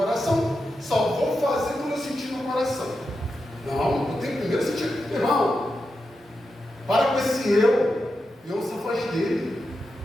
Só vou fazer quando eu sentir no coração. Não, eu tenho primeiro sentir. Irmão, para com esse eu e ouça a voz dele.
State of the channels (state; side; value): normal; both; correlation 0.88